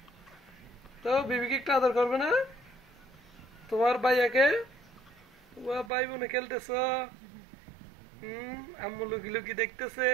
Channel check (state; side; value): drops out; left; at 5.9 s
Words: তো বিবিকে একটু আদর করবে না তোমার ভাইয়াকে? ভাই বোনে খেলতেছ। আম্মু লুকি লুকি দেখতেছে,